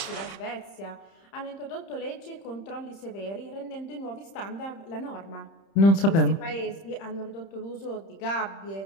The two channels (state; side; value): late; right; 30 ms